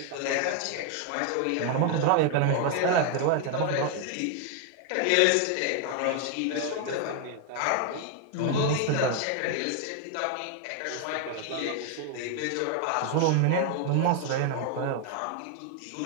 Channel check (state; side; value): different; both; correlation 0.01